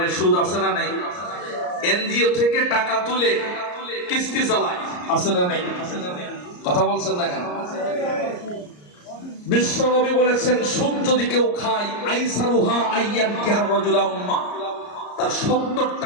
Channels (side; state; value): right; late; 34 ms